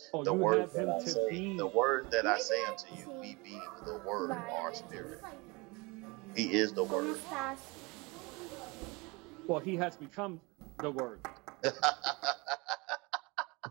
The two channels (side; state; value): left; quieter; 26.3 dB